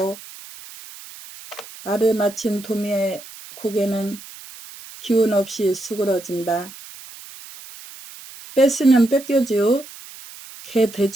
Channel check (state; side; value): noise; right; hiss, 17 dB below the sound